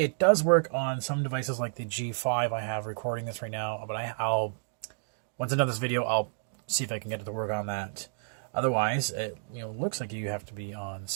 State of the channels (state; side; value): silent; left; digital silence